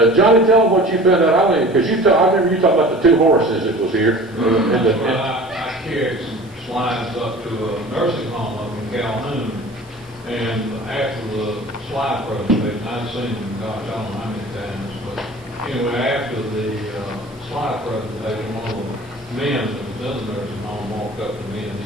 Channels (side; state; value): right; noise; hiss, 29 dB below the sound